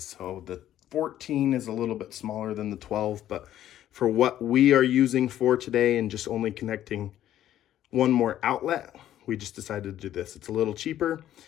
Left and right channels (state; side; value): quieter; right; 12.1 dB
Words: So the 14 is a little bit smaller than the 12, but for what we are using for today and just only connecting one more outlet, we just decided to do this. It's a little cheaper.